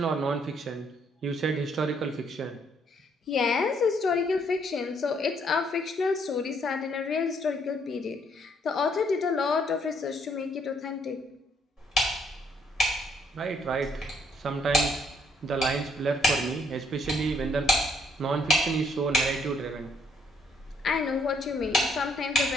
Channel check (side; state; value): both; normal; correlation 0.68